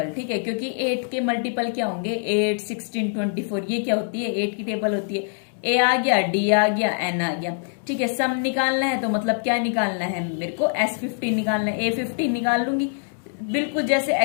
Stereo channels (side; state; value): right; silent; 63 dB below the other